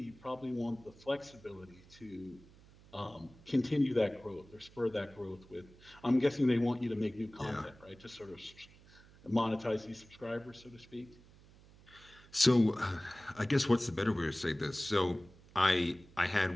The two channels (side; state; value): right; noise; hum, 24 dB below the sound